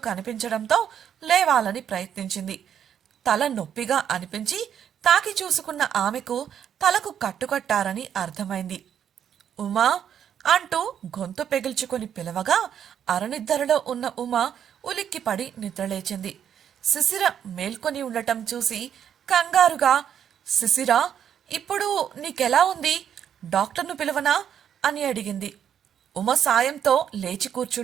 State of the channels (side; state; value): left; quieter; 9.0 dB